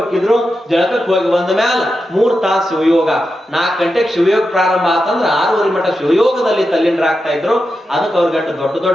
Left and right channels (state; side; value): normal; both; correlation 0.89